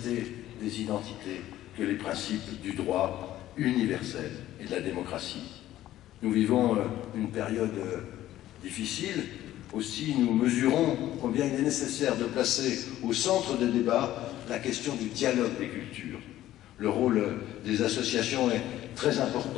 des identités que les principes du droit universel et de la démocratie. Nous vivons une période difficile, aussi nous mesurons combien il est nécessaire de placer au centre des débats la question du dialogue des cultures. Le rôle des associations est très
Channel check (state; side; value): quieter; right; 13.8 dB